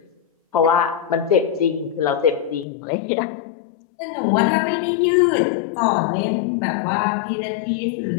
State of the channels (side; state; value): right; drops out; at 2.7 s